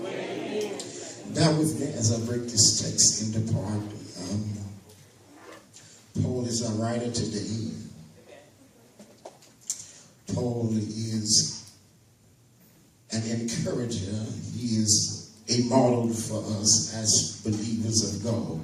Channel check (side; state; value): both; identical; correlation 1.00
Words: Bear with me as I break this text into part. Paul is our writer today. Paul is an encourager. He is a model for us as believers of God.